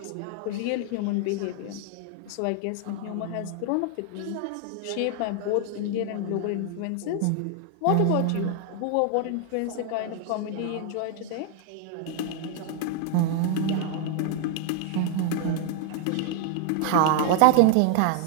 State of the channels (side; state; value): both; different; correlation 0.00